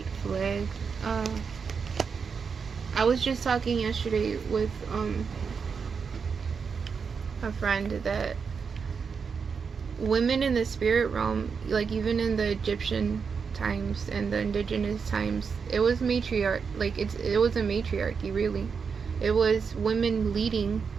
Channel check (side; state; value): left; quieter; 5.8 dB